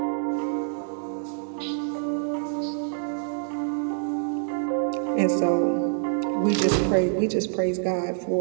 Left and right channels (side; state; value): left; silent; digital silence